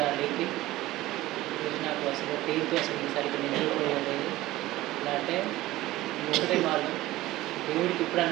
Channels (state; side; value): quieter; left; 17.0 dB